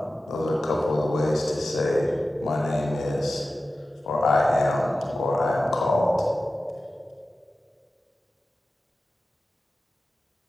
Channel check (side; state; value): both; normal; correlation 0.94